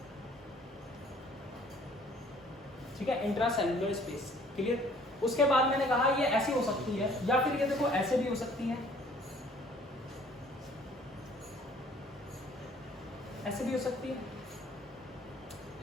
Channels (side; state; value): both; normal; correlation 0.56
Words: ठीक है, इंट्रा सेल्यूलर स्पेस। क्लियर? उसके बाद मैंने कहा ये ऐसी हो सकती है या फिर ये देखो ऐसे भी हो सकती है, ऐसे भी हो सकती है?